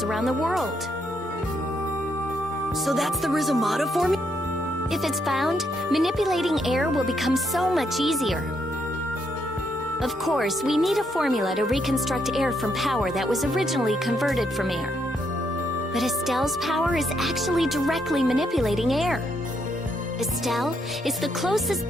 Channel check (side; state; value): both; normal; correlation 0.76